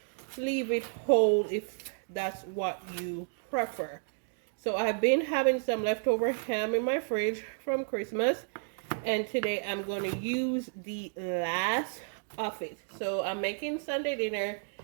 leave it whole if that's what you prefer. So I've been having some leftover ham in my fridge from Christmas, and today I'm going to use the last of it. So I'm making Sunday dinner,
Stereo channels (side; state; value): left; silent; 57 dB below the other